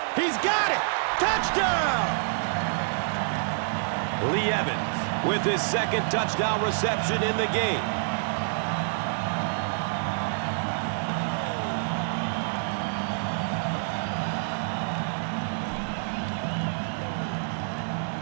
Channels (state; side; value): silent; left; 59 dB below the other